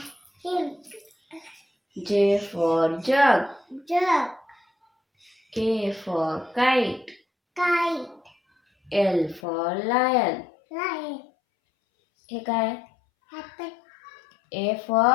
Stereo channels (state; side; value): drops out; right; at 9.4 s